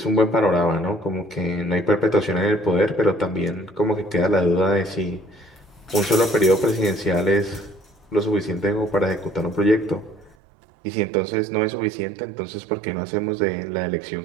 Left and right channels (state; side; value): drops out; left; at 10.4 s